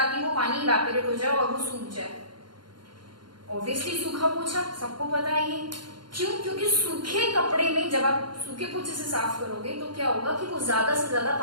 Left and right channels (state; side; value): late; left; 0.72 ms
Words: वो पानी इवेपोरेट हो जाए और वो सूख जाए? ऑब्वियसली सूखा पोछा, सबको पता है ये। क्यों? क्योंकि सूखे कपड़े में जब आप सूखे पोछे से साफ करोगे तो क्या होगा कि वो ज्यादा से ज्यादा